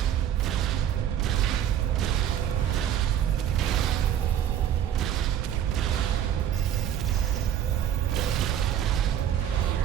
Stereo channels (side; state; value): left; quieter; 10.1 dB